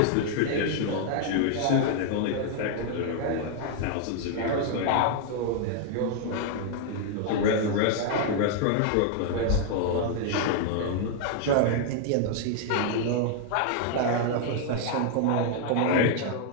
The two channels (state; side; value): different; both; correlation 0.00